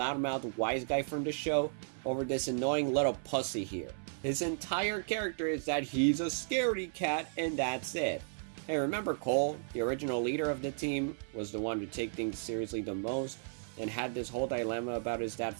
wise guy from the show over this annoying little pussy here. His entire character is that he's a scaredy cat and that's it. Hey, remember Cole, the original leader of the team, was the one to take things seriously the most, and had this whole dilemma about his dad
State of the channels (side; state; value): left; silent; 55 dB below the other